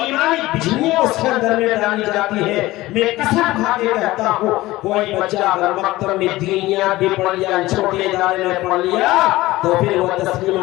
بجلیاں اس کے اندر میں ڈالی جاتی ہے, میں قسم کھا کے کہتا ہوں کوئی بچہ اگر مکتب میں دینیات بھی پڑھ لیا, چھوٹے ادارے میں پڑھ لیا تو پھر وہ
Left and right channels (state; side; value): quieter; right; 18.1 dB